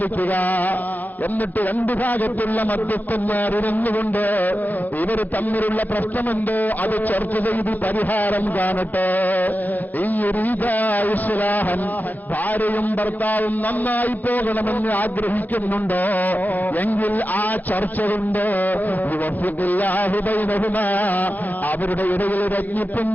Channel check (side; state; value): right; late; 0.083 ms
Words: എന്നിട്ട് രണ്ടു ഭാഗത്തുള്ള മധ്യസ്ഥന്മാർ ഇരുന്നുകൊണ്ട് ഇവർ തമ്മിലുള്ള പ്രശ്നമുണ്ടോ അത് ചർച്ച ചെയ്ത് പരിഹാരം കാണട്ടെ. ഈ ഇസ്ലാഹൻ ഭാര്യയും ഭർത്താവും നന്നായി പോകണമെന്ന് ആഗ്രഹിക്കുന്നുണ്ടോ എങ്കിൽ ആ ചർച്ച കൊണ്ട് അവരുടെ ഇടയിൽ രജ്ഞിപ്പും